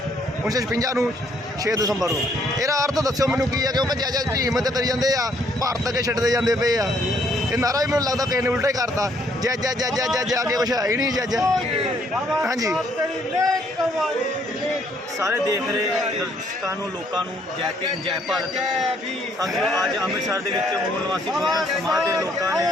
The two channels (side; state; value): both; normal; correlation 0.67